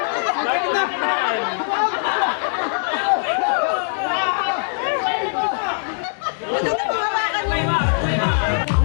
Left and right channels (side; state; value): right; silent; digital silence